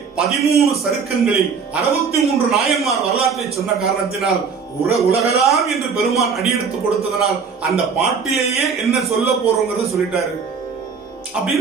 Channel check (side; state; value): left; quieter; 5.7 dB